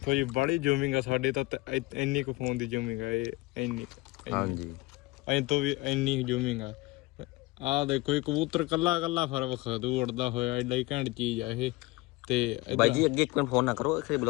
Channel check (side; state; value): right; quieter; 21.8 dB